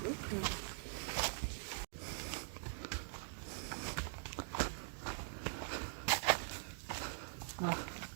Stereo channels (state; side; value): silent; left; digital silence